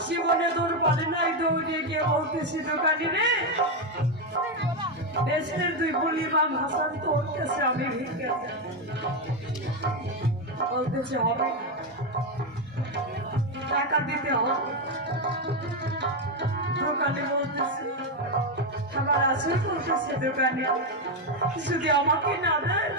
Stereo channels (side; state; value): both; normal; correlation 0.07